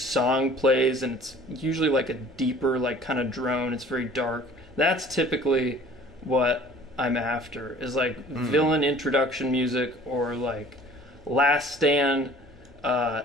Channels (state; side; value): normal; both; correlation 0.49